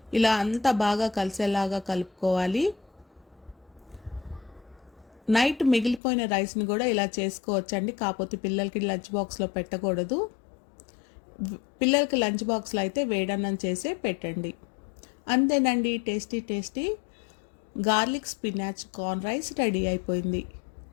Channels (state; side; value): drops out; right; at 6.0 s